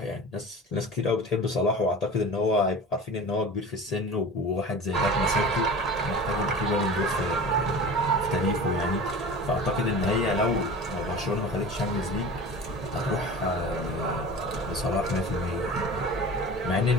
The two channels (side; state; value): both; normal; correlation 0.36